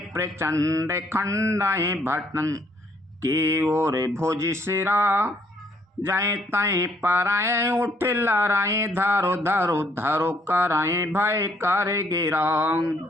प्रचंड खंडय, भटन के ओर भुज सिरा। जय तय पराए उठ लड़ाए, धरो धरो धरो कराए भय कर गिरा।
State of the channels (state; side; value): normal; both; correlation 0.67